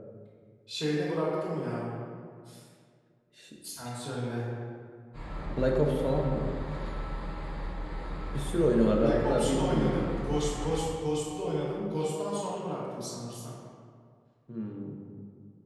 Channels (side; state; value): both; identical; correlation 1.00